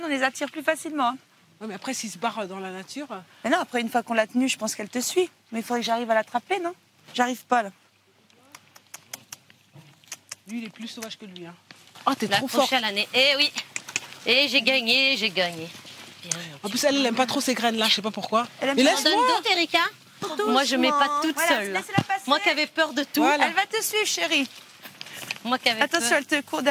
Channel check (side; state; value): both; identical; correlation 1.00